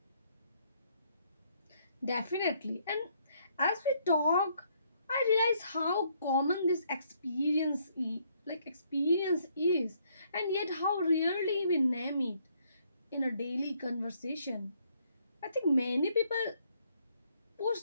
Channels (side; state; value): both; inverted; correlation -0.69